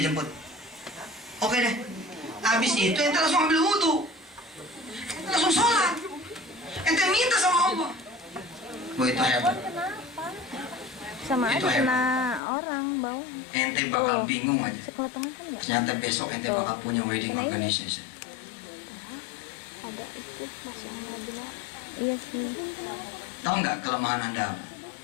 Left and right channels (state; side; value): drops out; right; at 12.4 s